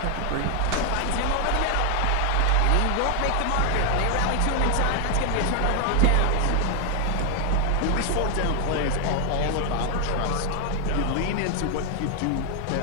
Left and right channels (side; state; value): both; different; correlation 0.00